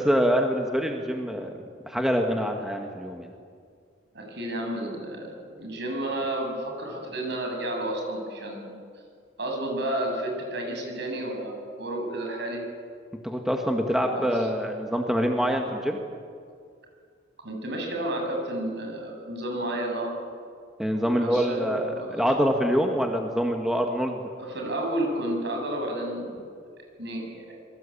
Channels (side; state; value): both; normal; correlation 0.64